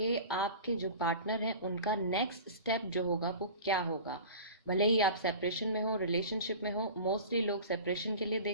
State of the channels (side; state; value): both; inverted; correlation -0.37